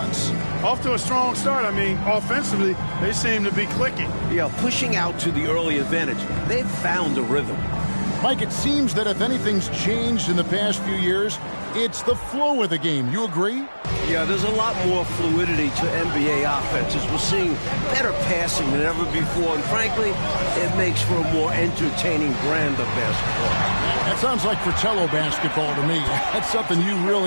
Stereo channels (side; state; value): both; inverted; correlation -1.00